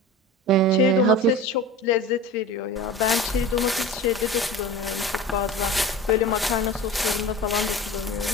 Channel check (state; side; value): normal; both; correlation 0.34